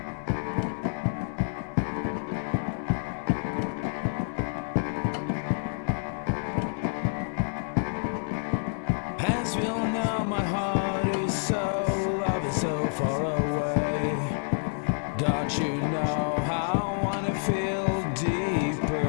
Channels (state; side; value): silent; right; digital silence